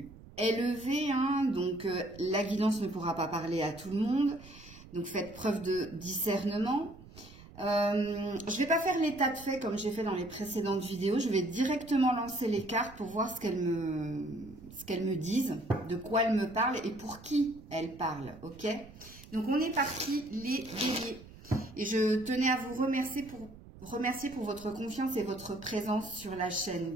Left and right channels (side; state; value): right; noise; rumble, 19 dB below the sound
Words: élevée, donc la guidance ne pourra pas parler à tout le monde. Donc faites preuve de discernement. Je ne vais pas faire l'état de fait comme j'ai fait dans les précédentes vidéos. Je vais directement lancer les cartes pour voir ce qu'elles me disent, de quoi elles me parlent et pour qui elles parlent. Ok? Donc on est parti les béliers. Et je tenais à vous remercier pour votre confiance et votre présence sur la chaîne,